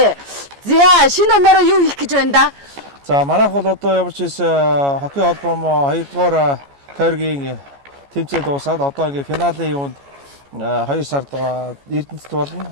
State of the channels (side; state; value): left; late; 14 ms